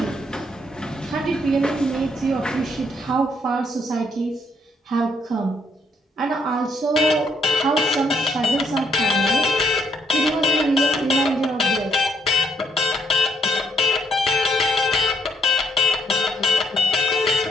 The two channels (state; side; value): normal; both; correlation 0.72